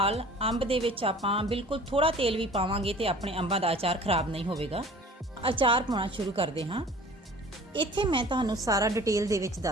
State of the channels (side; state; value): both; normal; correlation 0.46